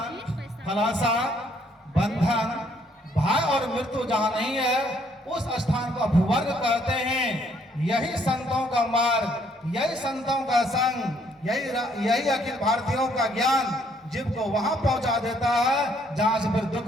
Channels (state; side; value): normal; both; correlation 0.67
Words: फलाशा, बंधन, भय और मृत्यु जहां नहीं है उस स्थान को अपवर्ग कहते हैं। यही संतों का मार्ग, यही संतों का संग, यही अखिल भारतीयों का ज्ञान जीव को वहां पहुंचा देता है जहां से फिर